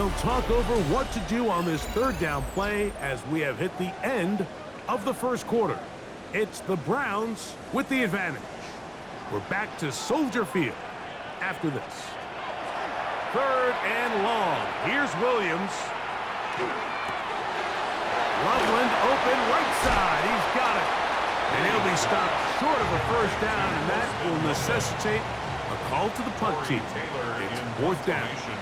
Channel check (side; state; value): both; identical; correlation 1.00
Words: talk over what to do on this third down play as we have hit the end of the first quarter. It's the Browns with the advantage. We're back to Soldier Field after this. Third and long. Here's Williams. Loveland open right side. He's got it. And he'll be stopped short of a first down, and that will necessitate a call to the punt team. It's fourth down.